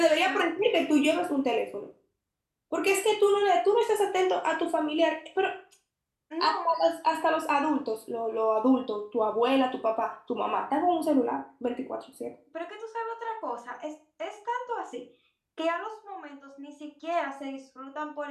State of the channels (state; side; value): identical; both; correlation 1.00